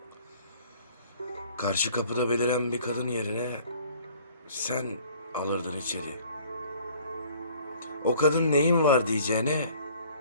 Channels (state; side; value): inverted; both; correlation -0.53